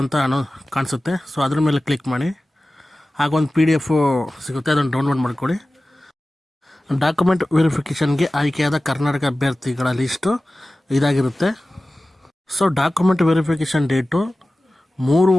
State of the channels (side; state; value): both; normal; correlation 0.96